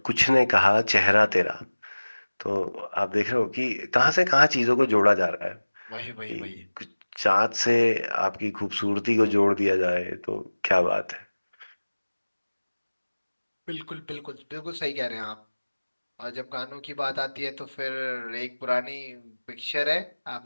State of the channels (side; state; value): both; inverted; correlation -1.00